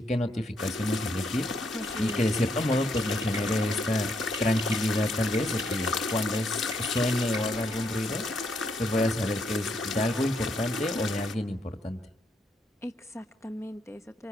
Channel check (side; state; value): both; normal; correlation 0.75